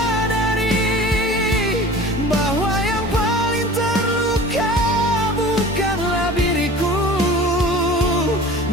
bahwa yang paling terluka bukanlah diriku,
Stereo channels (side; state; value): both; normal; correlation 0.40